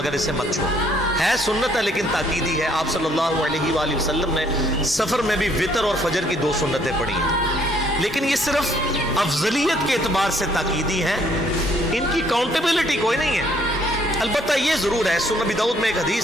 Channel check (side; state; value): both; normal; correlation 0.64